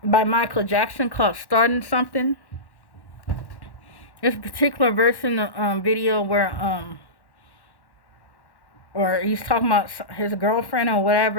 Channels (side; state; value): right; late; 1.1 ms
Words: by Michael Jackson called Starting Something. This particular verse in the video where or he's talking about his girlfriend or